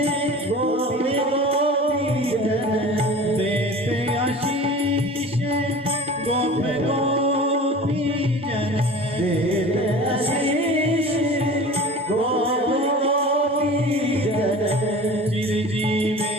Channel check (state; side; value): normal; both; correlation 0.38